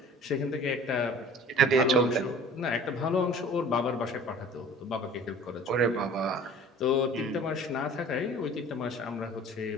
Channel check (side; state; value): both; normal; correlation 0.45